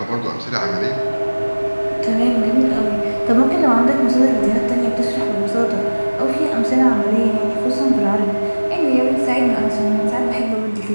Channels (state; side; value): inverted; both; correlation -1.00